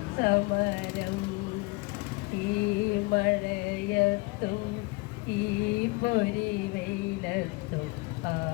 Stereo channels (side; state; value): right; quieter; 25.6 dB